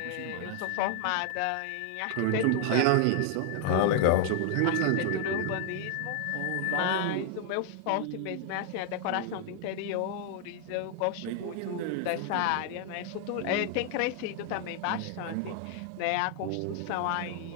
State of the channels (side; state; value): both; different; correlation 0.00